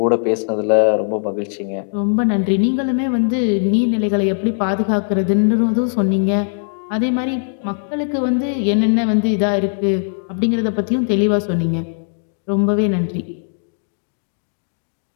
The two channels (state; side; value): silent; right; digital silence